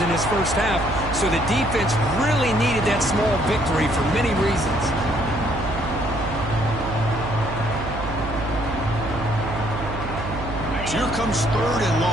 in his first half, so the defense really needed that small victory for many reasons. Here comes 3rd and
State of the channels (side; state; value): right; noise; hum, 7 dB below the sound